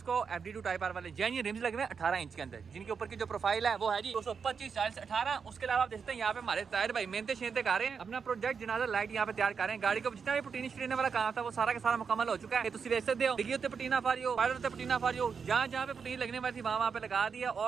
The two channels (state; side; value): quieter; left; 6.0 dB